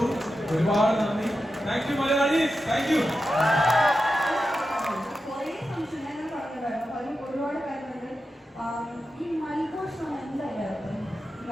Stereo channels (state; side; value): normal; both; correlation 0.91